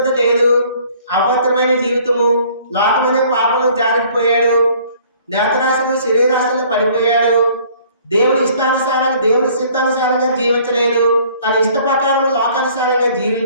లేదు, అపవిత్రమైన జీవితము, లోకమనే పాపంలో జారిపోయాడు, నేత్రాశలు శరీరాశలు పడిపోయాడు, దేవుని ఇష్టానుసారంగా దేవుని చిత్తానుసారంగా జీవించలేదు, తన ఇష్ట ప్రకారం లోకానుసారంగా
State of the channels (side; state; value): both; inverted; correlation -0.56